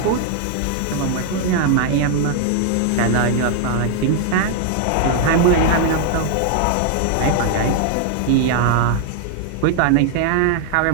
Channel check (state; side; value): different; both; correlation 0.00